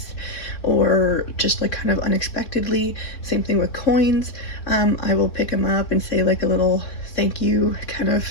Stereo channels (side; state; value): right; late; 3.6 ms